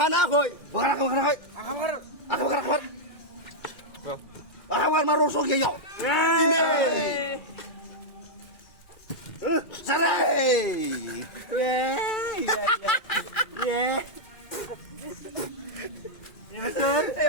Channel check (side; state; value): right; late; 2.1 ms